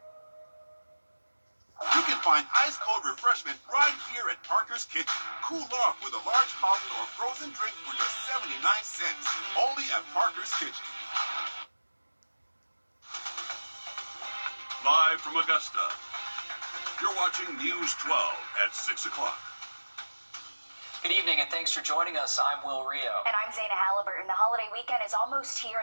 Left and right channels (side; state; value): both; inverted; correlation -1.00